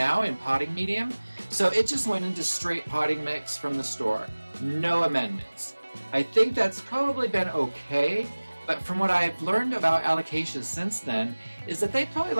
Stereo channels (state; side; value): inverted; both; correlation -1.00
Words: in potting medium, so it just went into straight potting mix from the store. No amendments. I think that's probably been okay, but from what I've learned about Alocasias since then, is that they probably